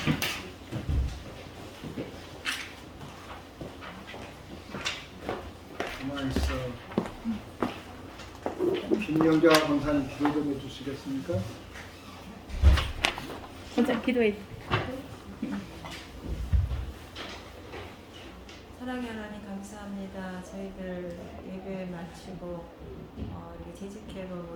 가만히 있어. 김영자 권사님 기도 좀 해주시겠습니까? 먼저 기도해. 사랑의 하나님 감사합니다. 저희들 예배 마치고 이렇게 재직회로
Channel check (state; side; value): identical; both; correlation 1.00